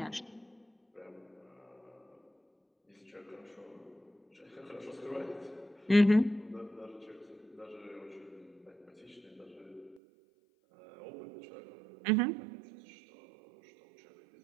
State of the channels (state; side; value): drops out; left; at 10.0 s